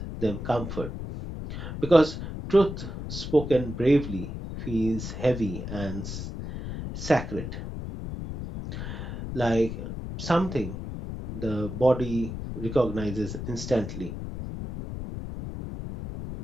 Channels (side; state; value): left; noise; rumble, 7 dB below the sound